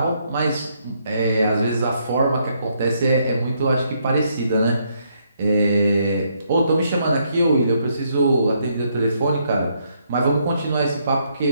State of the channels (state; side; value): inverted; both; correlation -0.73